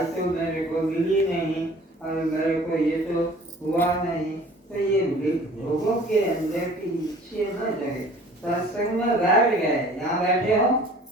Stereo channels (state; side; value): normal; both; correlation 0.49